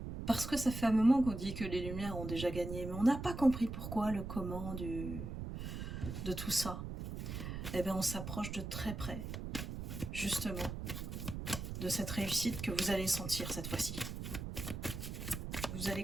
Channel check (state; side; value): noise; right; rumble, 6 dB below the sound